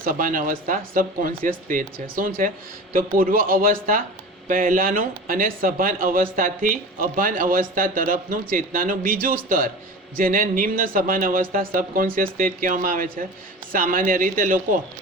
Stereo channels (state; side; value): normal; both; correlation 0.34